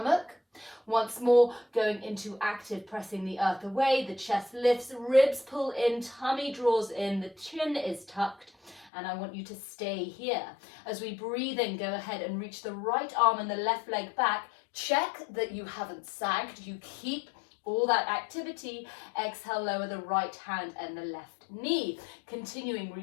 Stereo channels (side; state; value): right; drops out; at 8.9 s